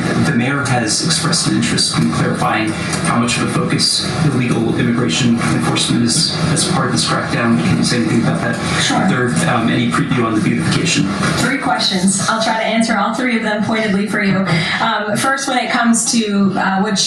the mayor has expressed an interest in clarifying how much of a focus illegal immigration enforcement is as part of this crackdown. Can you say anything about that? Sure. Is there any preview on the beautification? 3 questions. I'll try to answer all 3 of them pointedly for you. First, when it comes to what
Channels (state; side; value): identical; both; correlation 1.00